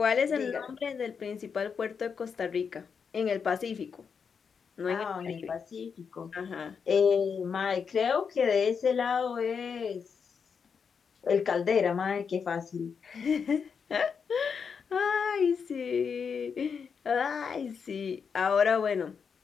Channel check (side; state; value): right; quieter; 6.2 dB